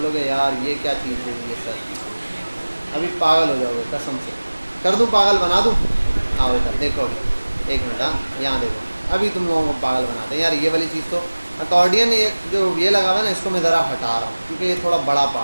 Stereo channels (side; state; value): both; inverted; correlation -1.00